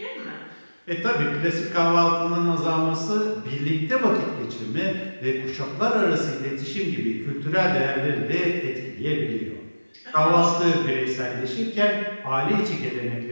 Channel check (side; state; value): both; inverted; correlation -1.00